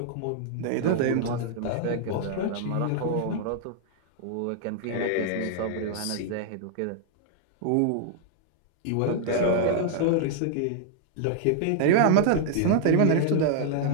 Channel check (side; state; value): both; different; correlation -0.01